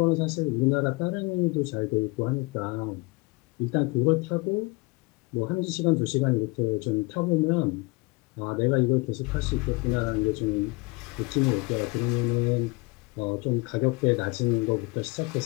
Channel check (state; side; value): quieter; right; 25.9 dB